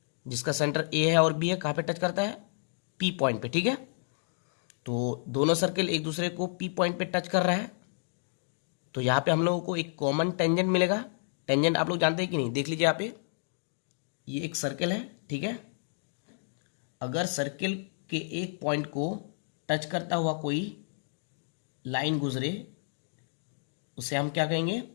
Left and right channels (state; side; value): silent; right; digital silence